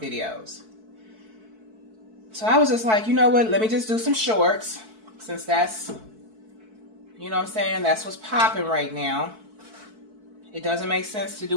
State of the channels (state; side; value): late; left; 4.6 ms